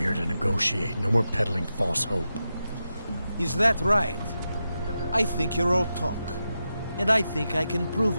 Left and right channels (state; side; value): inverted; both; correlation -0.89